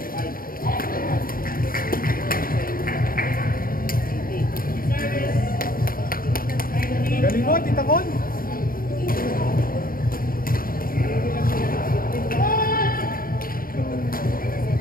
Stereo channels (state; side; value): late; right; 0.42 ms